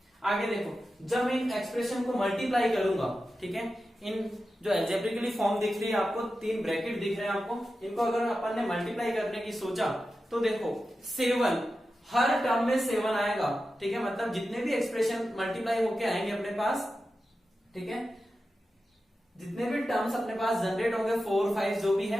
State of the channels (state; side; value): normal; both; correlation 0.92